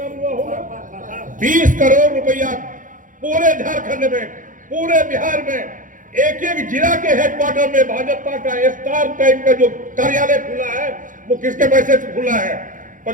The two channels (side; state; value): left; late; 0.38 ms